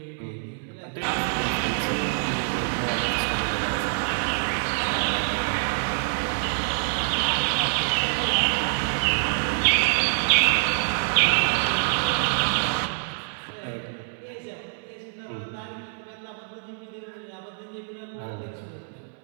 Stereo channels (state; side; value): silent; left; 61 dB below the other